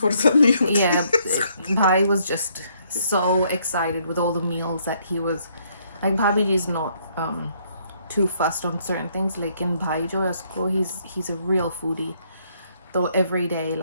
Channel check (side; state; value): both; inverted; correlation -0.69